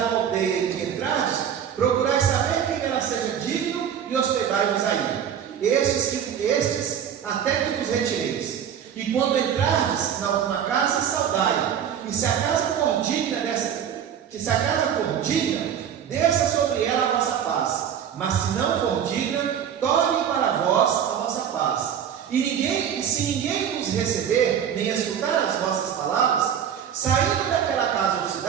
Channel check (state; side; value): quieter; left; 8.8 dB